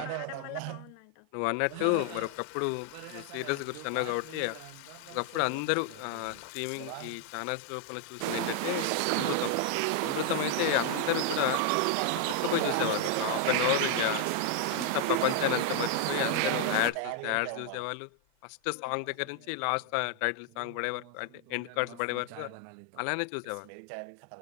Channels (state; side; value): different; both; correlation 0.00